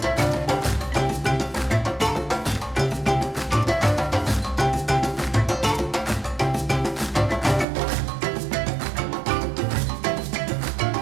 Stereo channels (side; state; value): left; drops out; at 7.7 s